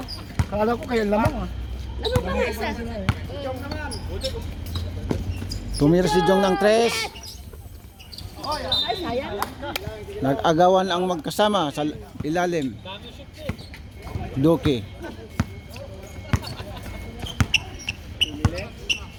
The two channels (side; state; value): both; identical; correlation 1.00